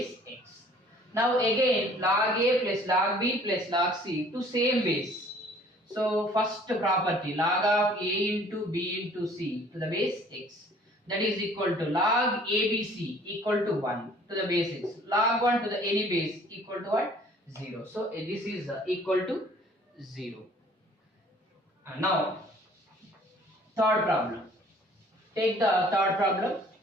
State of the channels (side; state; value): both; normal; correlation 0.54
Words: x. Now again log a plus log b plus log c to same base. So first property log of a into b into c to the base x, that is equal to log abc equal to 1 to the base x, log 1 to the any base equal to what? 0. So this is equal to 0. Now third problem. Take the third problem.